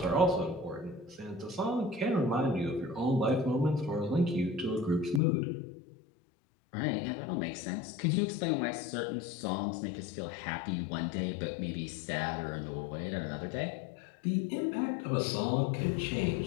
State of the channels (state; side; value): drops out; right; at 5.2 s